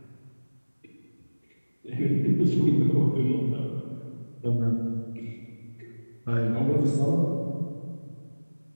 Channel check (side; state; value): both; inverted; correlation -1.00